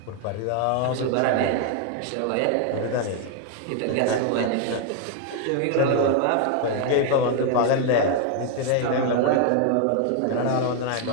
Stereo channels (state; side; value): different; both; correlation 0.00